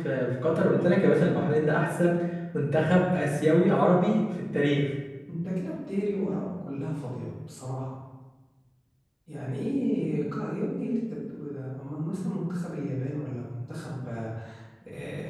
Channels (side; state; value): both; identical; correlation 1.00